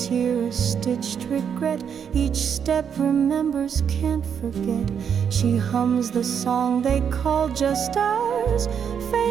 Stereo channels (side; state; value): left; quieter; 7.6 dB